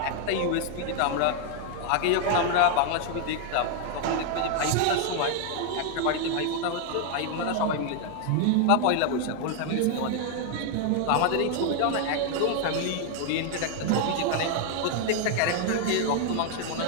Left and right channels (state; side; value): different; both; correlation 0.00